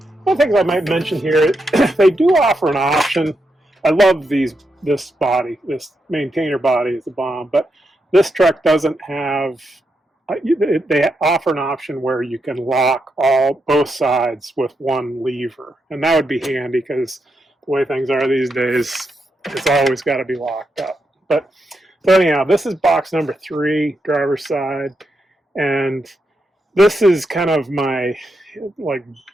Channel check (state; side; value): normal; both; correlation 0.84